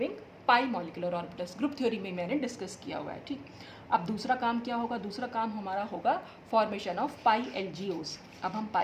pi molecular orbitals, group theory में मैंने डिस्कस किया हुआ है। ठीक, अब दूसरा काम क्या होगा? दूसरा काम हमारा होगा फॉर्मेशन ऑफ पाई एलजीओस। अब हम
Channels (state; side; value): identical; both; correlation 1.00